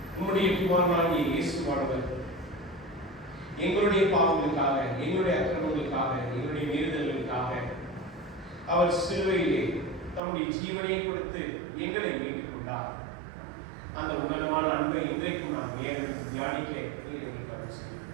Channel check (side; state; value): left; drops out; at 10.2 s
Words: உன்னுடைய குமாரனாகிய இயேசுவானவர் எங்களுடைய பாவங்களுக்காக, எங்களுடைய அக்கிரமங்களுக்காக, எங்களுடைய மீறுதல்களுக்காக அவர் சிலுவையிலே தம்முடைய ஜீவனை கொடுத்து எங்களை மீட்டுக் கொண்டார். அந்த உணர்வான அன்பை இன்றைக்கும் நாம் தியானிக்க